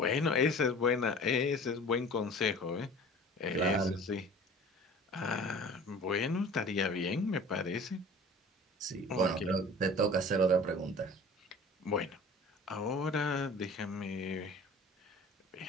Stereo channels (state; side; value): normal; both; correlation 0.43